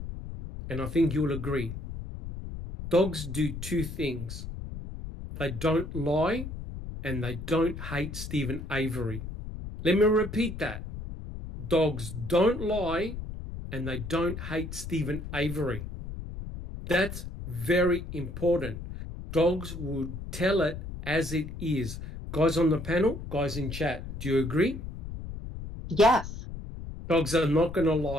and I think you'll agree. Dogs do two things. They don't lie, and they don't hate Stephen Avery. Let me repeat that. Dogs don't lie, and they don't hate Stephen Avery. That's very important. Dogs will tell it as it is. Guys on the panel, guys in chat, do you agree? Yes. Dogs are not going to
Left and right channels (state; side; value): noise; left; rumble, 9 dB below the sound